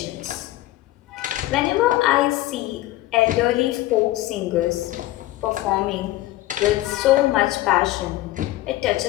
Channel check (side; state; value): right; quieter; 16.6 dB